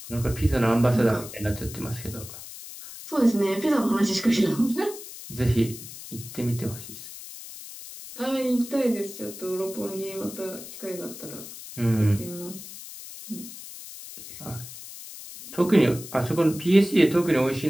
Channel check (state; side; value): noise; left; hiss, 13 dB below the sound